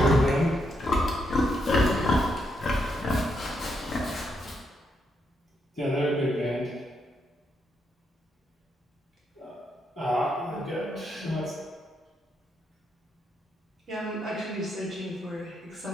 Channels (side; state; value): both; normal; correlation 0.79